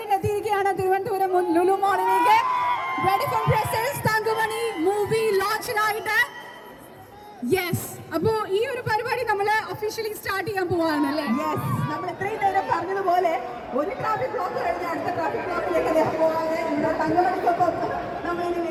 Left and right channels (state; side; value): identical; both; correlation 1.00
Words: എത്തിയിരിക്കുകയാണ് തിരുവനന്തപുരം ലുലു മാളിലേക്ക്. Ready for presence Thankamani movie ലോഞ്ചിനായിട്ട്. യെസ്, അപ്പോ ഈ ഒരു പരിപാടി നമ്മൾ ഒഫീഷ്യലി സ്റ്റാർട്ട് ചെയ്യാൻ പോവാണ് അല്ലേ? യെസ്, നമ്മൾ ഇത്രയും നേരം പറഞ്ഞതുപോലെ ഒരു ട്രാഫിക് ബ്ലോക്ക് കഴിഞ്ഞ അടുത്ത ട്രാഫിക് ബ്ലോക്കിലേക്ക് അദ്ദേഹം പോകാതെ ഇവിടെ തങ്കമണിക്കൊപ്പം നമ്മളിനി